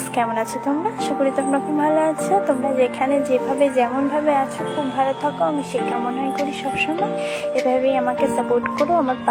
কেমন আছো তোমরা? আশা করি তোমরা খুব ভালো আছো। তোমরা যেখানে যেভাবে যেমনভাবে আছো খুব ভালো থাকো, আমি সে কামনাই করি সবসময়। এভাবেই আমাকে সাপোর্ট করো, আমার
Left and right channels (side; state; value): both; identical; correlation 1.00